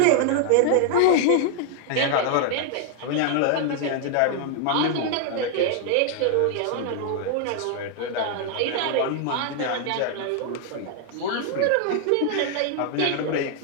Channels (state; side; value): different; both; correlation 0.00